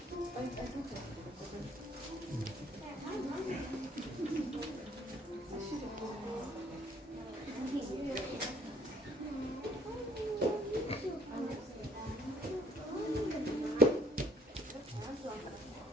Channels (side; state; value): both; normal; correlation 0.61